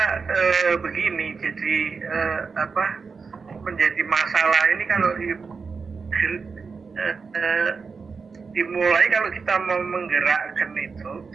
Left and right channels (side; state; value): left; quieter; 5.0 dB